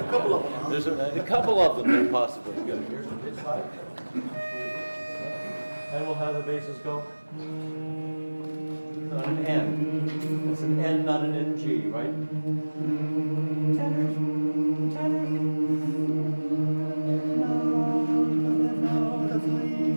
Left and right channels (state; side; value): inverted; both; correlation -1.00